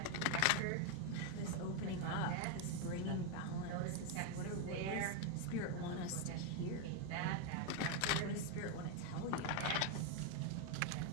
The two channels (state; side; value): different; both; correlation 0.02